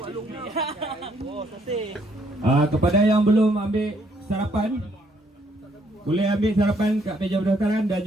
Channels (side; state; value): both; normal; correlation 0.69